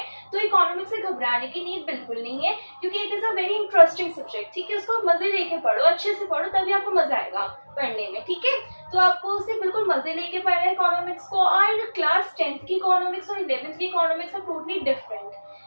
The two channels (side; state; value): both; inverted; correlation -1.00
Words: तो इकोनॉमिक्स से घबराने की नीड बिल्कुल नहीं है, क्योंकि it is a very interesting subject. ठीक है, उसको मजे लेके पढ़ो, अच्छे से पढ़ो, तभी आपको मजा आएगा पढ़ने में। ठीक है, तो आपको उसे बिल्कुल मजे लेके पढ़ना है इकोनॉमिक्स को। और क्लास 10th की इकोनॉमिक्स और 11th की इकोनॉमिक्स आर टोटली डिफरेंट।